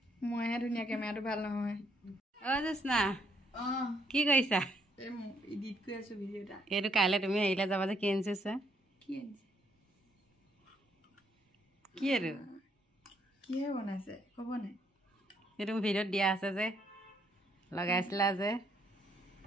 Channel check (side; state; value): both; normal; correlation 0.71